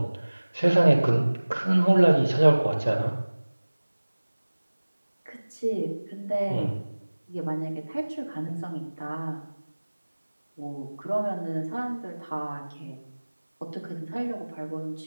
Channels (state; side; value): inverted; both; correlation -1.00